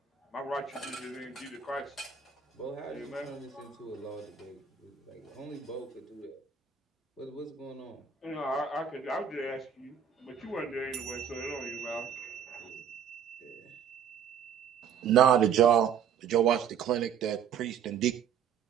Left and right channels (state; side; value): quieter; left; 7.9 dB